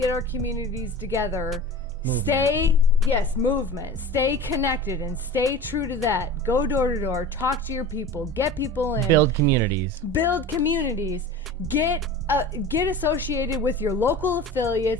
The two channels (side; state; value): both; normal; correlation 0.35